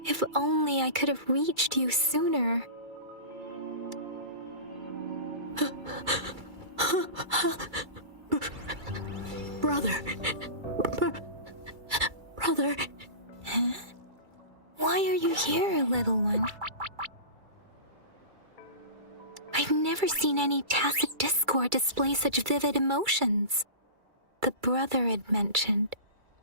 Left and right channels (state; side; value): late; left; 2.3 ms